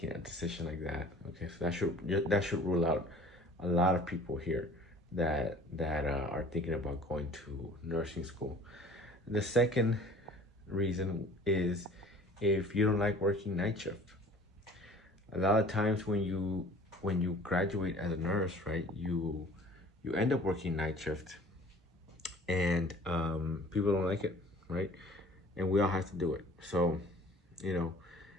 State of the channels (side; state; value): both; normal; correlation 0.48